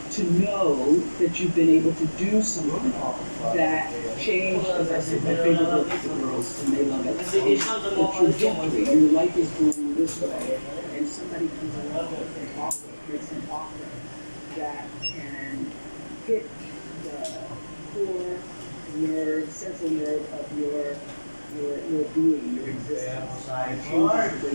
to know that you've been able to do something that changed, as I said, my favorite book is The Girls, and they love it. The trajectory, your life is going this way, and somebody comes along and makes an offer that can hit the core nerve, central nerve of your being, your existence, and changes the way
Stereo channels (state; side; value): inverted; both; correlation -1.00